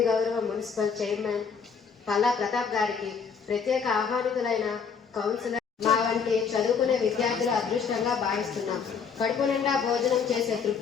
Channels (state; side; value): quieter; right; 6.1 dB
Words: గౌరవ మున్సిపల్ చైర్మన్ పల్లా ప్రతాప్ గారికి, ప్రత్యేక ఆహ్వానితులైన కౌన్సిలర్ మా వంటి చదువుకునే విద్యార్థుల అదృష్టంగా భావిస్తున్నాం. కడుపు నిండా భోజనం చేసే